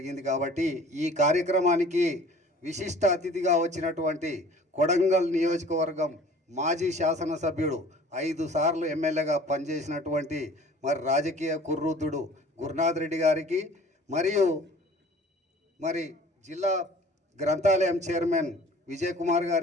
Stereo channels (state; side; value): normal; both; correlation 0.48